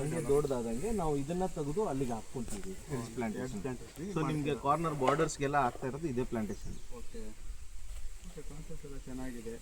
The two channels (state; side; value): identical; both; correlation 1.00